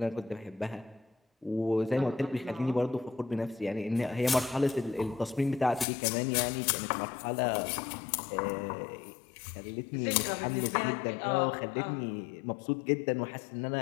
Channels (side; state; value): right; drops out; at 5.9 s